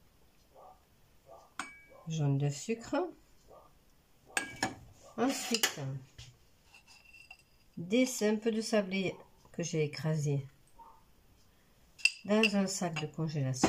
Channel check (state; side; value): identical; both; correlation 1.00